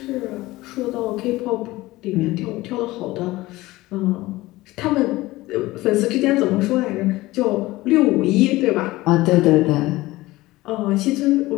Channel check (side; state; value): right; quieter; 18.8 dB